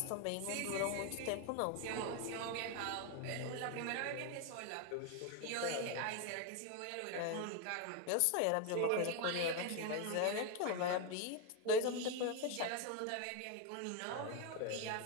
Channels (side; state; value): both; different; correlation 0.01